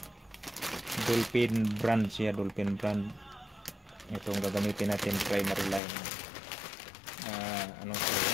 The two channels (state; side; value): drops out; right; at 5.8 s